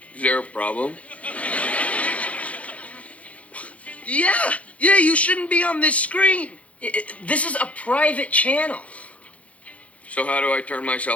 Is there a problem? Yeah, you shouldn't be on this screen. This is a private channel. So how do I turn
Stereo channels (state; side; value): late; right; 0.065 ms